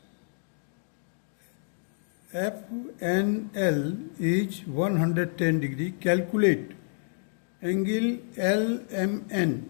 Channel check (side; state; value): right; silent; digital silence